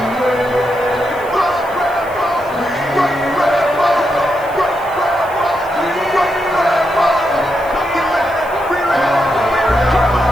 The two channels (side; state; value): left; noise; hiss, 23 dB below the sound